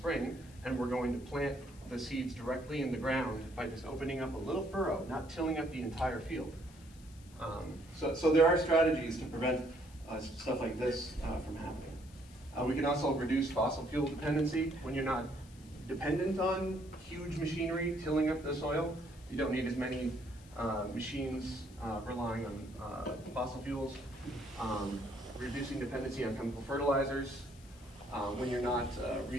and we're going to plant the seeds directly in the ground by just opening up a little furrow, not tilling up the entire field. So there are strategies to prevent stuff like this from happening. We can also reduce fossil fuel dependency. When you're not dependent on huge machinery tilling up the soil, you don't need as many machines relying on fossil fuels. Reducing dependency on chemical fertilizers. When you're not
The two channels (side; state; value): left; noise; hiss, 24 dB below the sound